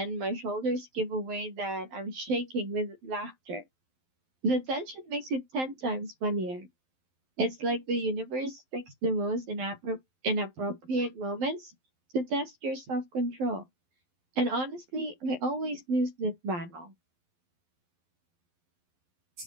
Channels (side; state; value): left; late; 12 ms